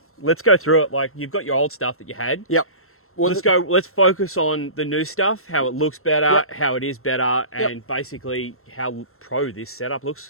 let's go through it. Like, you've got your old stuff that you had. Yep. Well, Let's focus on the new stuff, how it looks better, Yep. how it is better, Yep. and basically how pro this setup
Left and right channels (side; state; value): right; late; 0.62 ms